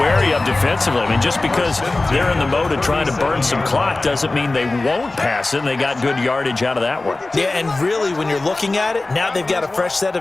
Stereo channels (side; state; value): right; quieter; 3.1 dB